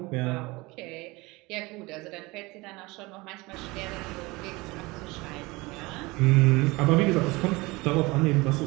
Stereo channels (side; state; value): left; quieter; 23.0 dB